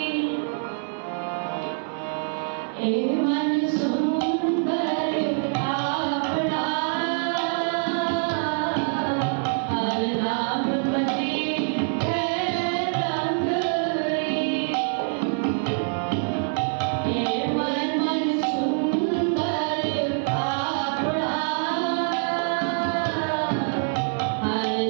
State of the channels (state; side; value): silent; left; 62 dB below the other